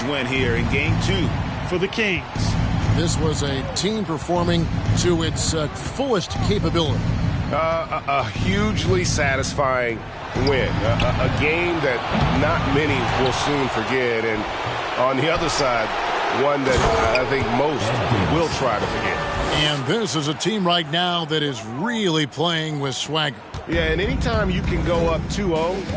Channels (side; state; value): both; identical; correlation 1.00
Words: win here in Game 2 for the Kings. This was a team performing to its fullest capability. A hugely satisfying win. A game that not many will soon forget. And on the other side, one that I think most will try to forget. And this is a team right now that is really playing with swagger. Yeah, and anytime you can go up